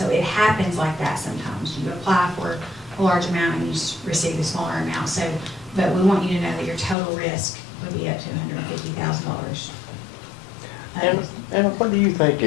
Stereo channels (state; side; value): drops out; right; at 7.0 s